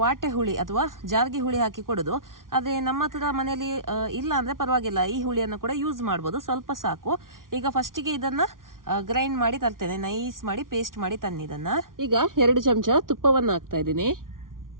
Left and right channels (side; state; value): left; late; 0.90 ms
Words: ವಾಟೆ ಹುಳಿ ಅಥವಾ ಜಾರ್ಗೆ ಹುಳಿ ಹಾಕಿ ಕೊಡೋದು. ಆದ್ರೆ ನಮ್ಮ ಹತ್ರ ಮನೆಯಲ್ಲಿ ಇಲ್ಲ ಅಂದ್ರೆ ಪರವಾಗಿಲ್ಲ, ಈ ಹುಳಿಯನ್ನು ಕೂಡ ಯೂಸ್ ಮಾಡ್ಬೋದು, ಸ್ವಲ್ಪ ಸಾಕು. ಈಗ ಫಸ್ಟಿಗೆ ಇದನ್ನ ಗ್ರೈಂಡ್ ಮಾಡಿ ತರ್ತೇನೆ, ನೈಸ್ ಮಾಡಿ ಪೇಸ್ಟ್ ಮಾಡಿ ತನ್ನಿದನ್ನ. ಈಗ 2 ಚಮಚ ತುಪ್ಪವನ್ನ ಹಾಕ್ತಾ ಇದ್ದೀನಿ.